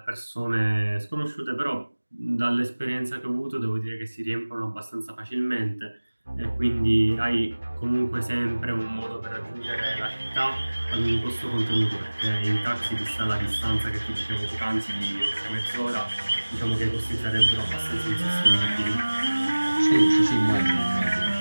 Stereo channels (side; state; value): both; inverted; correlation -1.00